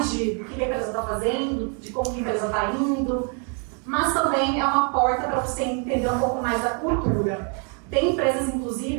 de o que a empresa está fazendo, de como a empresa está indo, mas também é uma porta para você entender um pouco mais da cultura. Tem empresas,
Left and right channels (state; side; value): quieter; left; 39.2 dB